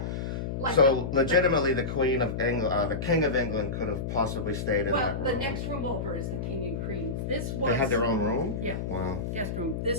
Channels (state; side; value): noise; left; hum, 4 dB below the sound